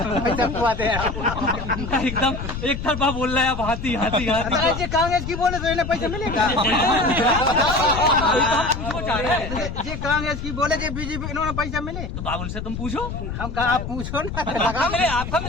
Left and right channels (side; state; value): left; noise; rumble, 6 dB below the sound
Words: एकदम एक तरफा बोल रहा है आप, हाथी हाथी हाथी। ये कांग्रेस की बोले तो इन्हें पैसा मिलेगा, ये कांग्रेस की बोले जो बीजेपी इन्होंने पैसा मिले, तो बाबुल से तुम पूछो, हम कहा आप पूछो ना, आपका